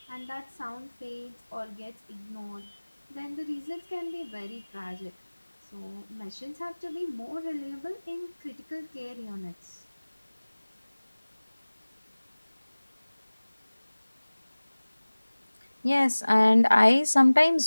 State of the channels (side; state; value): both; inverted; correlation -1.00